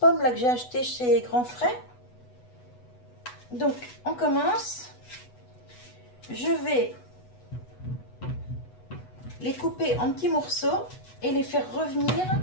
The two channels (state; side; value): late; right; 8.1 ms